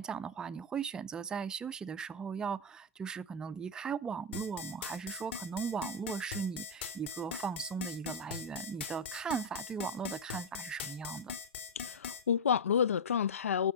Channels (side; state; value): both; normal; correlation 0.01